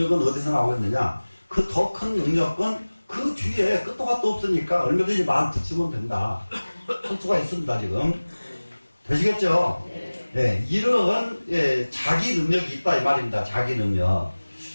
어디서 나오겠느냐? 그 더 큰 능력은 그 뒤에 끝도 갓도 없으니까 얼마든지 말 붙이면 된다. 할 수가 있습니다, 지금. 되시겠죠? 네. 이러한, 자기 능력이 있다, 이 말입니다. 자기 능력.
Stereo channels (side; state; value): both; inverted; correlation -1.00